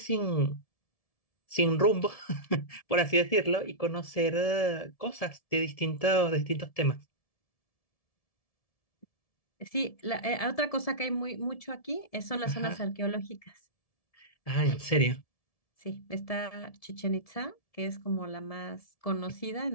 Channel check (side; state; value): right; late; 1.7 ms